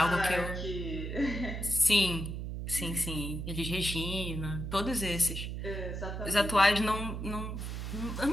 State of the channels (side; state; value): right; noise; hum, 5 dB below the sound